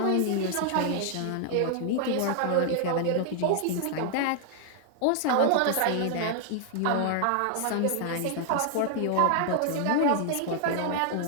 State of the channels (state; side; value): different; both; correlation 0.00